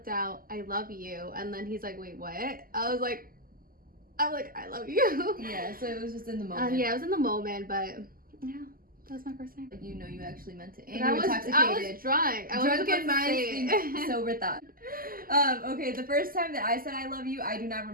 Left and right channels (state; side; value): late; left; 0.42 ms